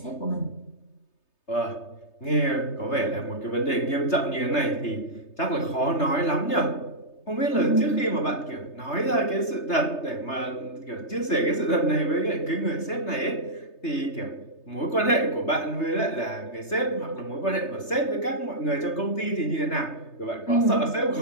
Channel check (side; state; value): right; late; 3.3 ms